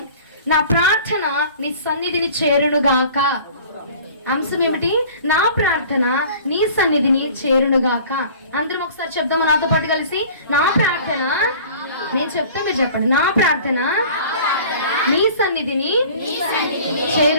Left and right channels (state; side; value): inverted; both; correlation -0.46